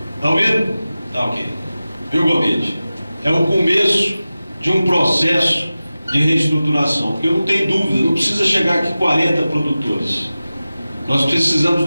Está ouvindo? Tá ok. Viu, Gomide? É o começo de um processo de reestruturação, porque eu não tenho dúvida, não precisa chegar aqui 40 produtores. Nós precisamos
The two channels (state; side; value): inverted; both; correlation -0.96